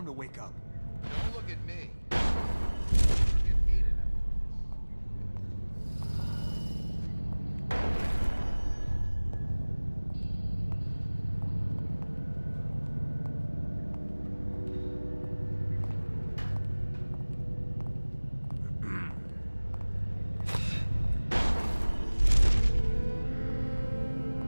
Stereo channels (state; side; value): inverted; both; correlation -1.00